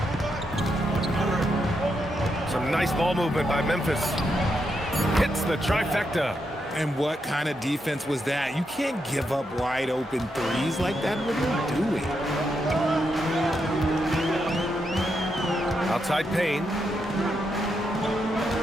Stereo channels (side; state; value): both; normal; correlation 0.82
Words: Some nice ball movement by Memphis. Hits the trifecta. And what kind of defense was that? You can't give up wide open threes like that. What are you doing? Outside Payne.